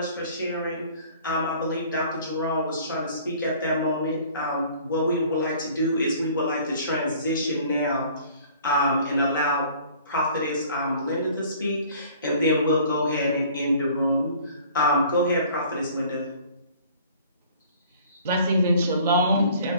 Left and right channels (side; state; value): both; inverted; correlation -0.52